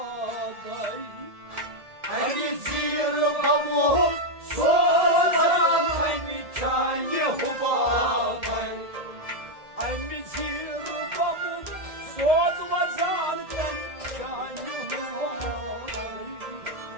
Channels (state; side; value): late; left; 1.7 ms